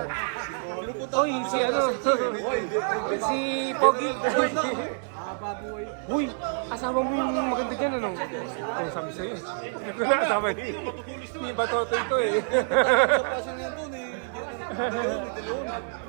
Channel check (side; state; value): left; silent; 60 dB below the other